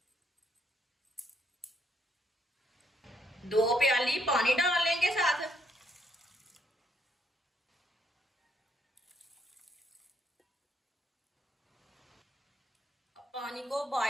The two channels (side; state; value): both; normal; correlation 0.73